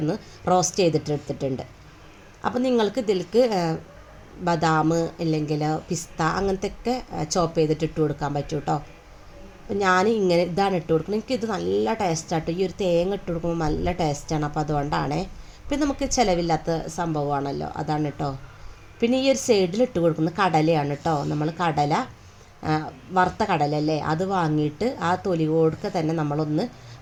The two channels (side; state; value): both; identical; correlation 1.00